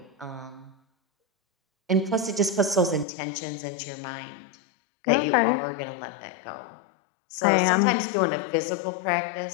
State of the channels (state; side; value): drops out; right; at 3.1 s